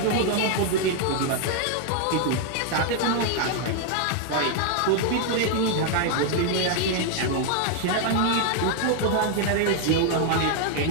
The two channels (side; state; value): both; different; correlation 0.00